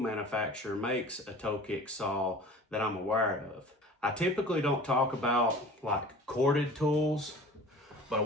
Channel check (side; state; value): both; normal; correlation 0.42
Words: makes a toe kick saw that I'm aware of. I typically don't talk about like corded tools, but